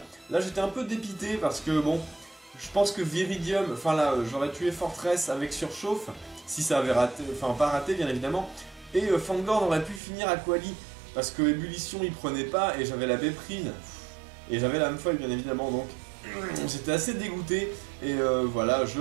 Là j'étais un peu dépité parce que bon, je pense que Viridium, enfin là j'aurais tué Fortress avec Surchauffe, si ça avait raté, enfin pas raté bien évidemment. Et Fangorn aurait pu finir Aquali parce que Ébullition il prenait pas et j'avais la Béprine. Et j'avais la Amphoille bien évidemment donc j'étais assez dégoûté. Et voilà, je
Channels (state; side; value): drops out; left; at 10.0 s